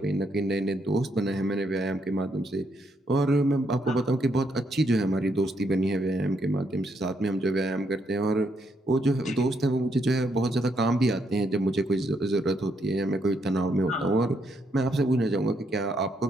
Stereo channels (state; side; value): normal; both; correlation 0.75